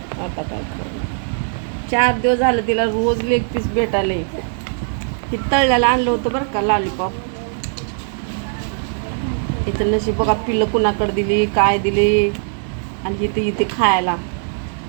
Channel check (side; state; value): left; silent; 63 dB below the other